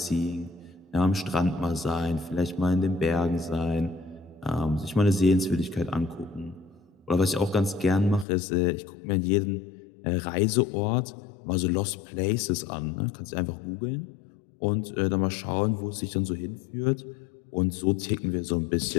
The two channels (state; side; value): drops out; right; at 8.2 s